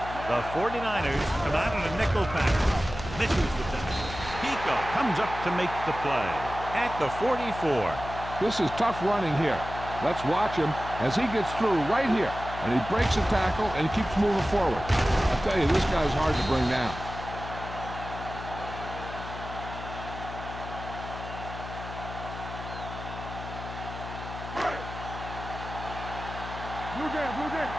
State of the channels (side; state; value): left; noise; hum, 10 dB below the sound